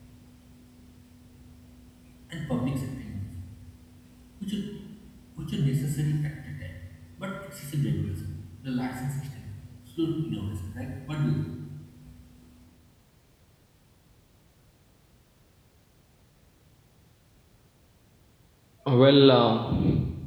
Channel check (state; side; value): identical; both; correlation 1.00